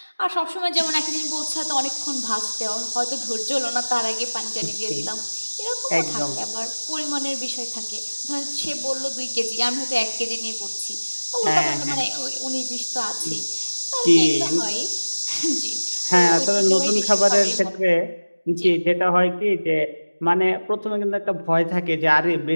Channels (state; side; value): inverted; both; correlation -1.00